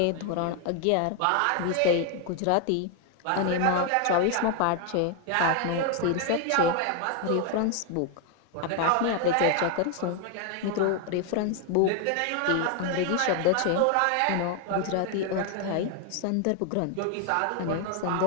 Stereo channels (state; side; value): different; both; correlation 0.01